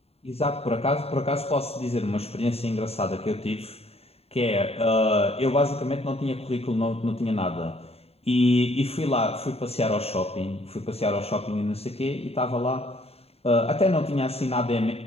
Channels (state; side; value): late; right; 0.29 ms